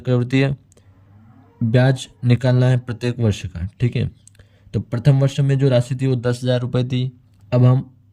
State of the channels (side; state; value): both; identical; correlation 1.00